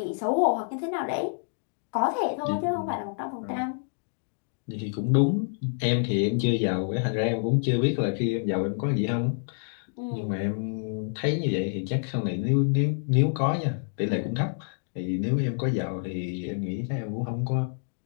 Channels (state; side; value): silent; right; digital silence